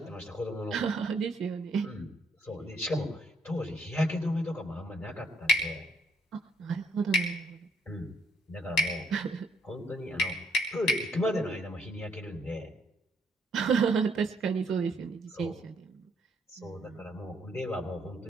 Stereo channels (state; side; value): normal; both; correlation 0.69